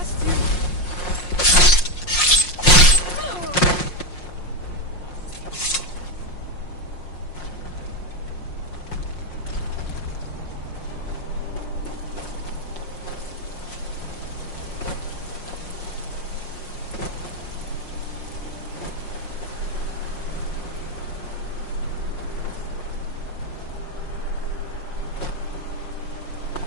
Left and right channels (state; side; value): late; right; 5.6 ms